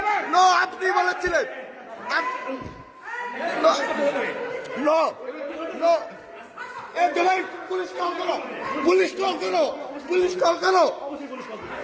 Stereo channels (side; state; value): both; identical; correlation 1.00